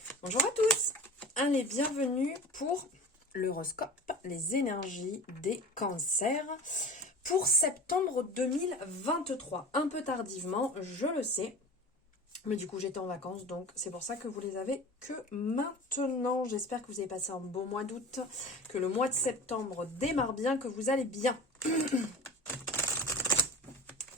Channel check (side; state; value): both; normal; correlation 0.36